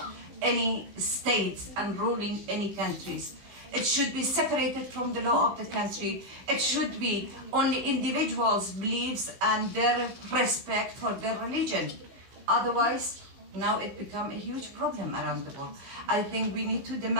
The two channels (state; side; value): late; left; 15 ms